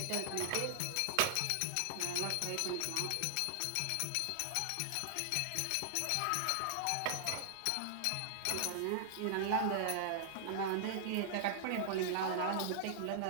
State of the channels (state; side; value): different; both; correlation -0.01